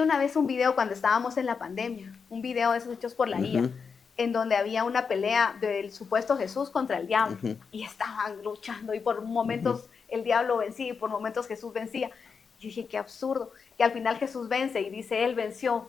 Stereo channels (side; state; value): right; quieter; 5.7 dB